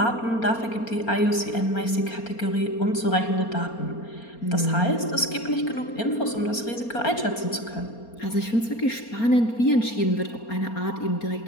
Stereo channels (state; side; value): late; right; 4.3 ms